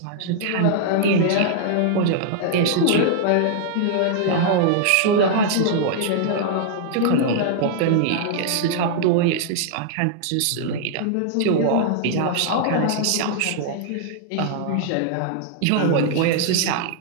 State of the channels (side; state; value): both; different; correlation -0.01